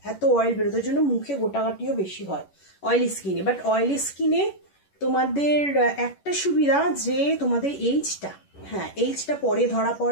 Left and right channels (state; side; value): late; right; 11 ms